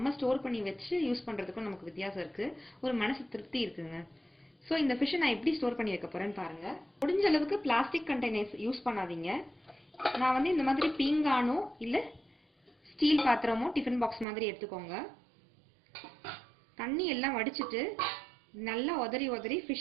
ஸ்டோர் பண்ணி வச்சு யூஸ் பண்ணுறதுக்கும் நமக்கு வித்தியாசம் இருக்குது. ஒரு மனசு திருப்தி இருக்குங்க. ஸோ இந்த ஃபிஷ்ஷை நான் எப்படி ஸ்டோர் பண்ணி வைக்க போகிறேன்னு பாருங்கள். முடிஞ்ச அளவுக்கு பிளாஸ்டிக் கண்டெய்னர்ஸ் யூஸ் பண்ணாதீங்க. நான் வந்து இந்த மாதிரி பீங்கானோ இல்லை ஸ்டீல் பாத்திரமோ டிஃபன் பாக்ஸ் மாதிரி எடுத்துக்கோங்க. தண்ணி எல்லாம் வடிச்சிட்டு நல்லா உதறி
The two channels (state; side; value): drops out; left; at 14.2 s